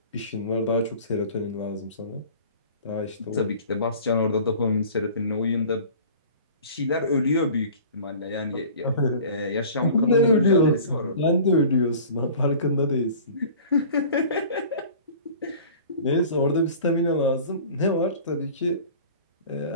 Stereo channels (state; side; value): inverted; both; correlation -0.44